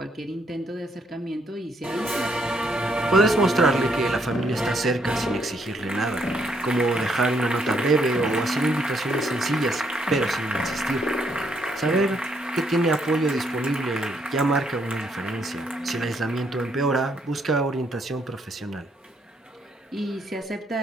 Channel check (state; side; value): normal; both; correlation 0.72